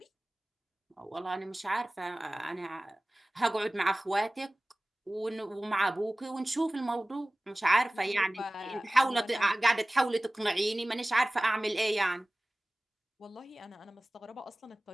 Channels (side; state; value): both; normal; correlation 0.98